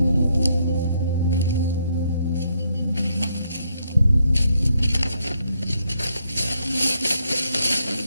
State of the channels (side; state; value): both; inverted; correlation -0.75